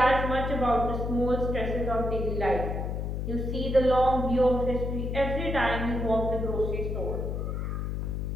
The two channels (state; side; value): noise; left; hum, 2 dB below the sound